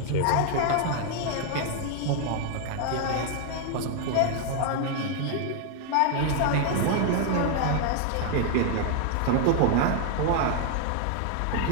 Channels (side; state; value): both; different; correlation 0.00